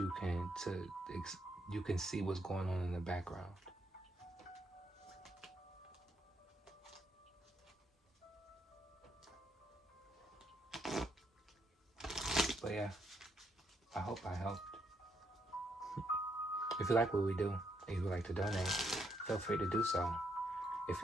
can see what's going on in the background. But yeah, I hope I helped. If you like what we do and you would like to donate, feel free to do so. If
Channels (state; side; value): normal; both; correlation 0.76